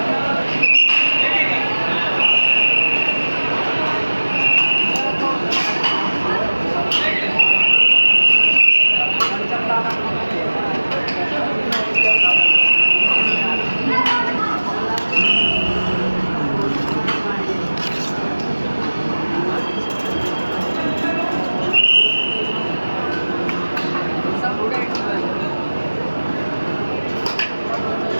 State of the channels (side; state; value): both; inverted; correlation -1.00